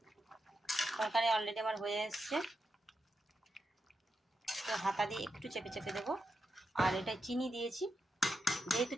তরকারি অলরেডি আমার হয়ে এসছে, তো হাতা দিয়ে একটু চেপে চেপে দেবো। আর এটা চিনি দিয়েছি, যেহেতু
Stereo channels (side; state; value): both; normal; correlation 0.87